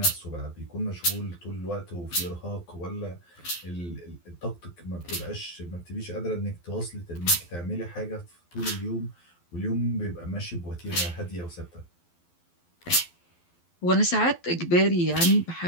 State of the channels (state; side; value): late; right; 12 ms